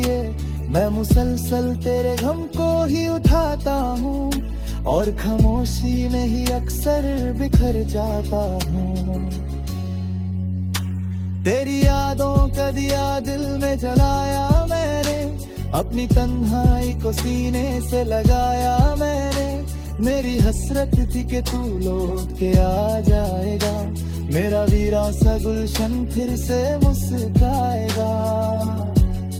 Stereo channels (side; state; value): both; identical; correlation 1.00